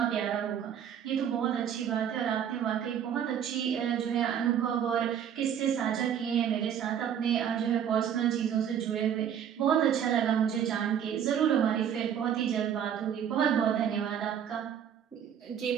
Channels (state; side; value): quieter; left; 8.9 dB